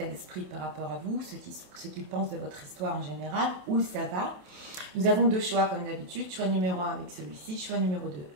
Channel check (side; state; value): left; late; 27 ms